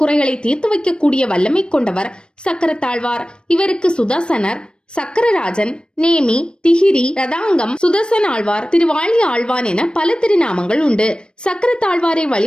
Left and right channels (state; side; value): late; right; 0.053 ms